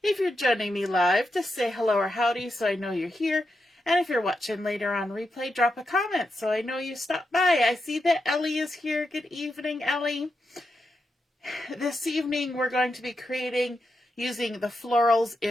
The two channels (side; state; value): both; normal; correlation 0.86